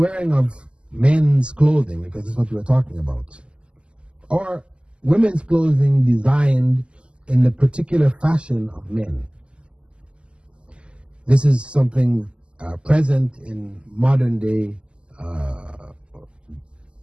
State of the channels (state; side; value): late; left; 0.052 ms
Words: of men's clothing, because this is what we're talking about, or women's clothing designed in the particular fashion of men. This is something present in modern day